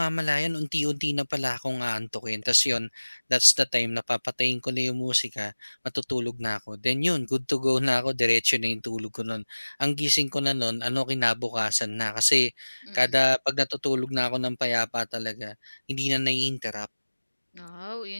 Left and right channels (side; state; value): both; inverted; correlation -1.00